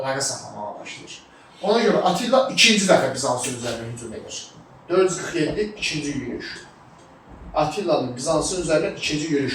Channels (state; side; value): identical; both; correlation 1.00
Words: saxlamağa başlayır. Ona görə Atilla ikinci dəfə Bizansın üzərinə hücum edir. 447 ikinci yürüyüş. Atilla'nın Bizansın üzərinə ikinci